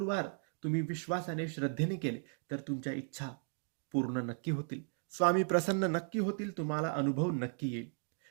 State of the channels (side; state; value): left; silent; 54 dB below the other